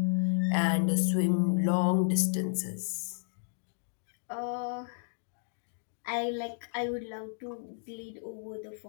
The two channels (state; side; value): silent; right; digital silence